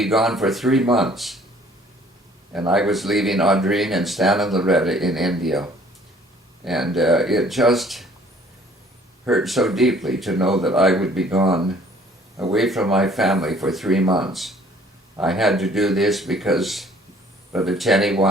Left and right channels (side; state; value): both; normal; correlation 0.56